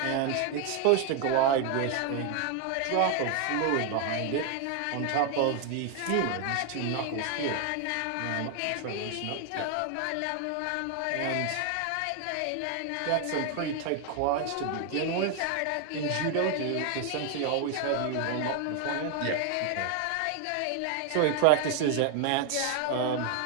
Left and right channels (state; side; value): different; both; correlation 0.00